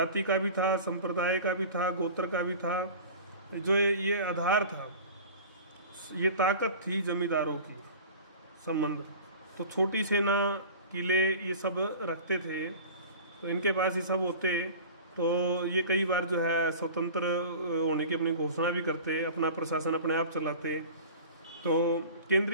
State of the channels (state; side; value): inverted; both; correlation -0.39